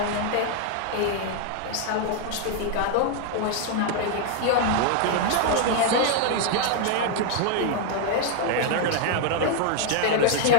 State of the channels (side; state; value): both; different; correlation 0.00